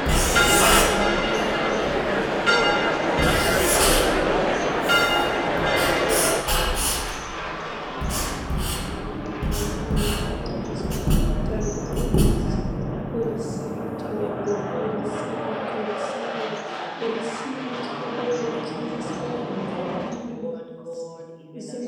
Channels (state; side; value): identical; both; correlation 1.00